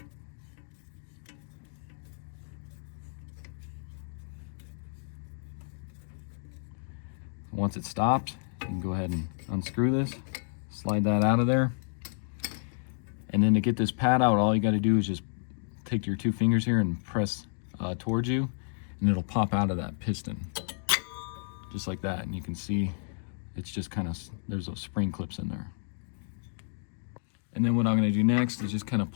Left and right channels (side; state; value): right; silent; digital silence